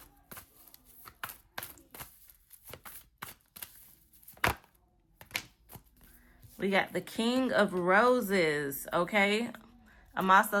We got the King of Roses, okay? I'm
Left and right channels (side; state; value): both; identical; correlation 1.00